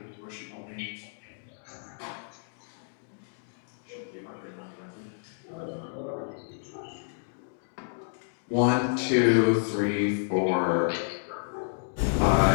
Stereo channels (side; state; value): right; silent; digital silence